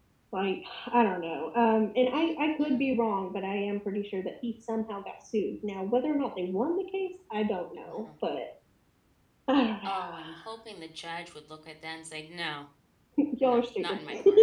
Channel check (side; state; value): both; identical; correlation 1.00